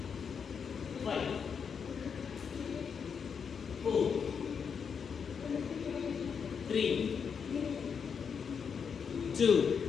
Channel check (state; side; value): quieter; right; 6.6 dB